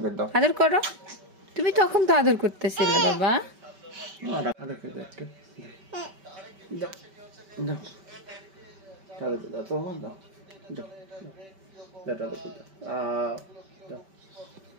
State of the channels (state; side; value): late; left; 5.2 ms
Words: আদর করো। তুমি তখন তো আদর করতেছিলে বাবা।